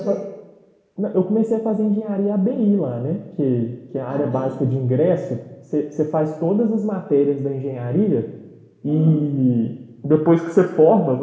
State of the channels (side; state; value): both; identical; correlation 1.00